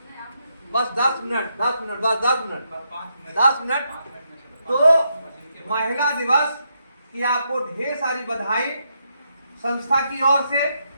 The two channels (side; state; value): both; inverted; correlation -0.80